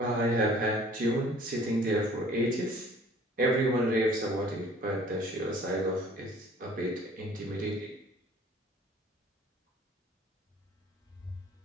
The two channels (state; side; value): normal; both; correlation 0.53